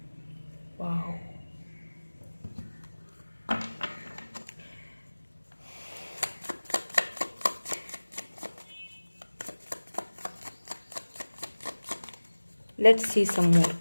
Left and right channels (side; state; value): both; inverted; correlation -1.00